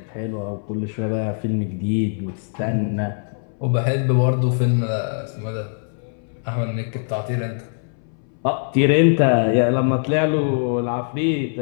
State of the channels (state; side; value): silent; right; 64 dB below the other